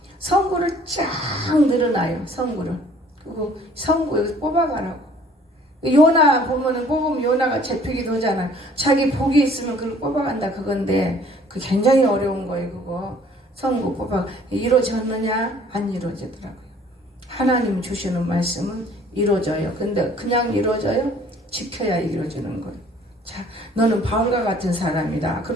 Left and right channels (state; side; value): normal; both; correlation 0.56